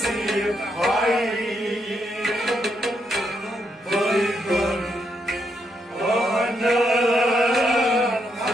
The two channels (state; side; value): normal; both; correlation 0.79